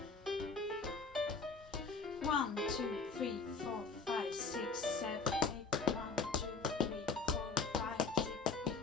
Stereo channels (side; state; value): right; quieter; 4.4 dB